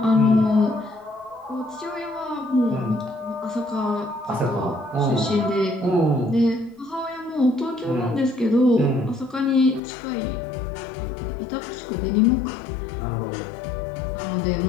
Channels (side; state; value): right; drops out; at 9.8 s